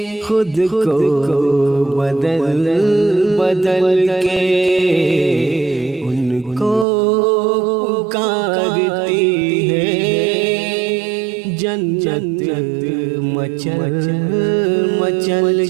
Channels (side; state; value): left; drops out; at 6.9 s